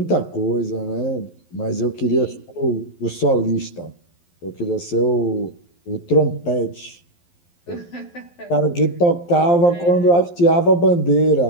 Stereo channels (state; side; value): late; right; 11 ms